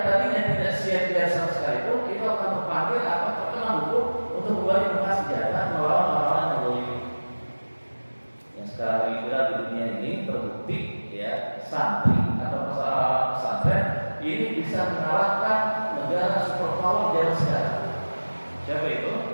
tadinya tidak siap-siap sama sekalipun itu akan terpanggil atau terkena hukum untuk kembali buka senjata melawan orang-orang yang boleh. Yang sekarang ini di dunia ini terbukti ya, santri atau orang pesantren ini bisa mengalahkan negara superpower zaman sekarang. Siapa itu?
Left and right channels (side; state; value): both; inverted; correlation -1.00